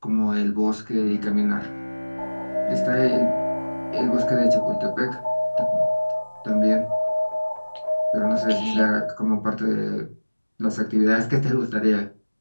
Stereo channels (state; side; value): inverted; both; correlation -1.00